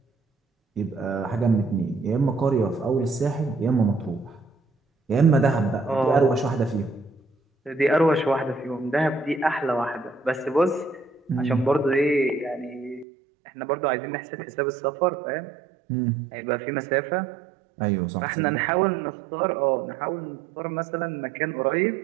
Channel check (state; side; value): drops out; left; at 13.1 s